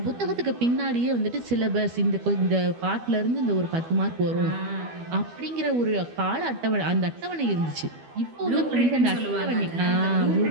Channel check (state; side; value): late; left; 12 ms